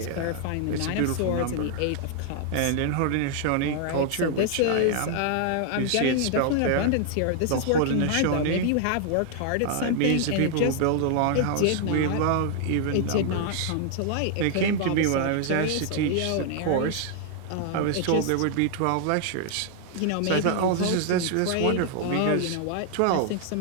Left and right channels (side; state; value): both; different; correlation 0.00